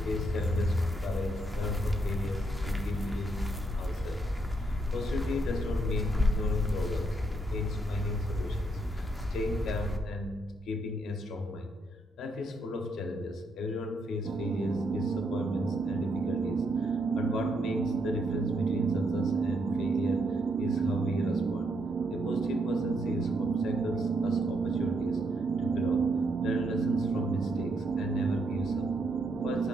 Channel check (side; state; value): both; normal; correlation 0.76